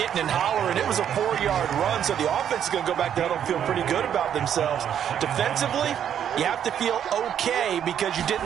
and hollering, it was a 4-yard run, so the offense is going to go back there and feel pretty good about themselves. Defensively, you have to feel okay because you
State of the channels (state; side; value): quieter; left; 9.3 dB